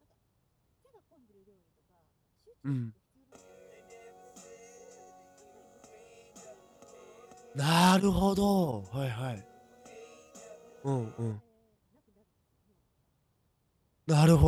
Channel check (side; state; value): both; identical; correlation 1.00